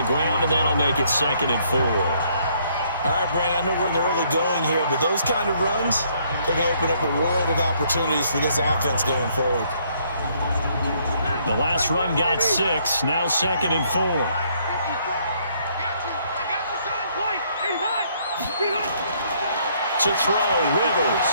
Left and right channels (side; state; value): both; inverted; correlation -0.67